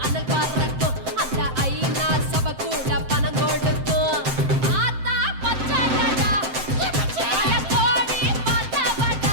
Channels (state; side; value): late; left; 7.7 ms